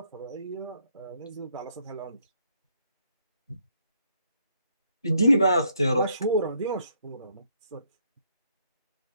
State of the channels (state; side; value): inverted; both; correlation -0.71